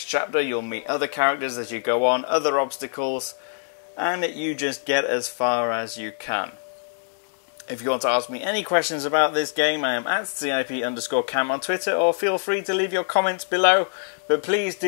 chapter. You'll meet other characters as you go on, other obstacles, and you just get as far as you can. If you want to ask me any questions about this game, I am at CIP_Cam on Twitter, or feel free to leave your comments below. But please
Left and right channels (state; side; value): silent; right; 62 dB below the other